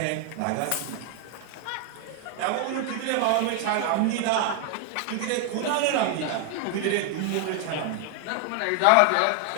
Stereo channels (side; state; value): both; different; correlation 0.00